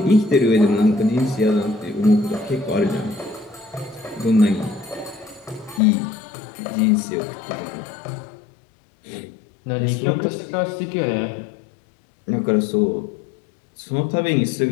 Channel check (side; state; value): right; drops out; at 5.8 s